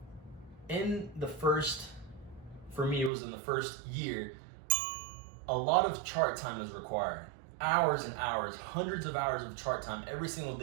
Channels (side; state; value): left; drops out; at 3.1 s